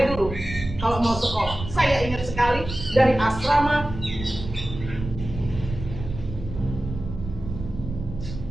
dulu. Kalau mau sekolah, saya ingat sekali dari asrama.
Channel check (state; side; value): noise; right; rumble, 9 dB below the sound